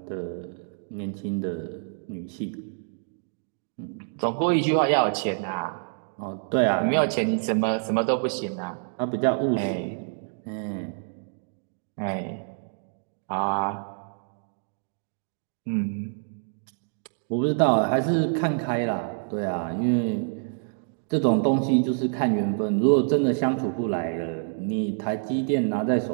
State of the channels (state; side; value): silent; left; digital silence